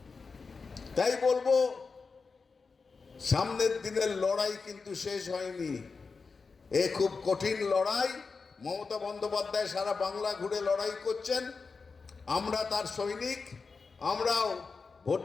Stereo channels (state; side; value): quieter; right; 4.7 dB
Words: তাই বলবো, সামনের দিনের লড়াই কিন্তু শেষ হয়নি। এ খুব কঠিন লড়াই। মমতা বন্দ্যোপাধ্যায় সারা বাংলা ঘুরে লড়াই করছেন, আমরা তার সৈনিক। আমরাও